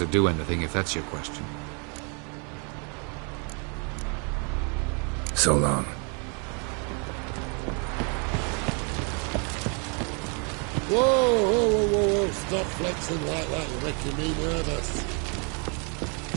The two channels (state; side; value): quieter; left; 36.3 dB